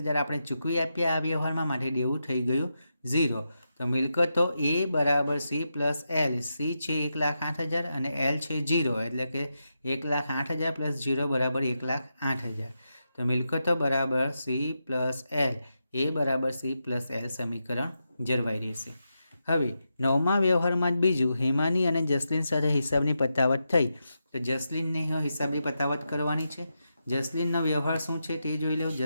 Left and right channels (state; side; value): inverted; both; correlation -0.87